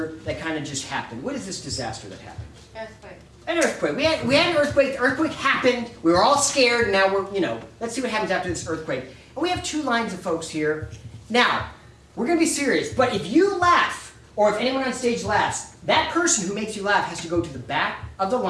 that kind of just happened. What is this disaster that happened? Earthquake. An earthquake. We had an earthquake. The earthquake happened. We were all scared. And now we're, let's see what happens after this earthquake. And we have two lines of folks here. Now, we're going to be serious. But if you laugh, or if anyone on stage laughs, that person who makes you laugh has to go to the back of the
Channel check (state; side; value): identical; both; correlation 1.00